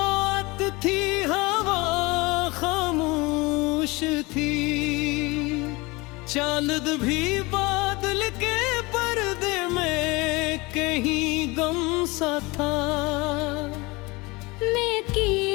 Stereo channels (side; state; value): right; quieter; 24.3 dB